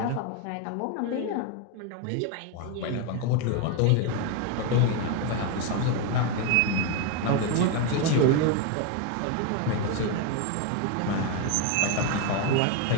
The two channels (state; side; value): different; both; correlation 0.02